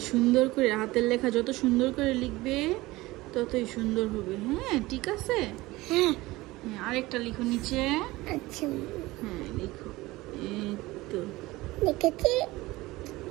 সুন্দর করে হাতের লেখা যত সুন্দর করে লিখবে ততই সুন্দর হবে। হ্যাঁ ঠিক আছে। হ্যাঁ আরেকটা লিখো নিচে। আচ্ছা হ্যাঁ লিখো। এই তো লিখেছি।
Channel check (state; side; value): quieter; left; 19.7 dB